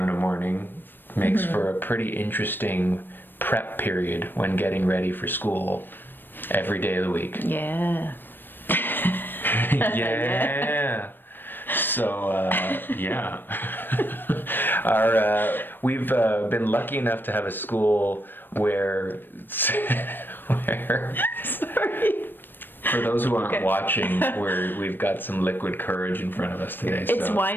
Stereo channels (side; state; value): right; late; 0.095 ms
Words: in a morning, makes for a pretty interesting prep period when getting ready for school every day of the week. Yeah. Yeah. So, yeah. We've been lucky enough to have a school where Sorry. for those who aren't watching, we've got some liquid courage in front of us today. It's so.